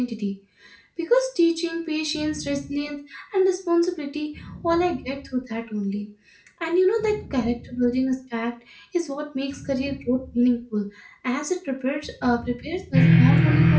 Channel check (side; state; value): both; identical; correlation 1.00